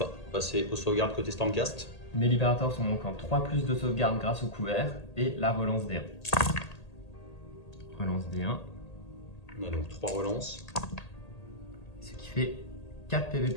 Passer aux sauvegardes côté Stormcast. Mes libérateurs sont donc en 3+ de sauvegarde grâce au couvert et la relance D1. Relance D1. On a donc 3 relances. Ce qui fait 4 PV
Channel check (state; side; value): late; right; 1.8 ms